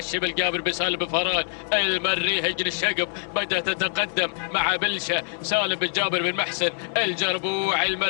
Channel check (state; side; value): silent; right; digital silence